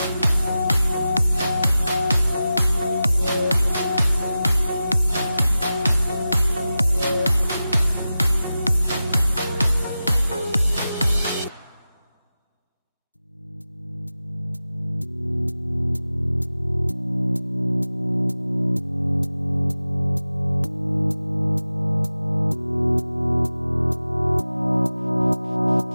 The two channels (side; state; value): both; inverted; correlation -0.94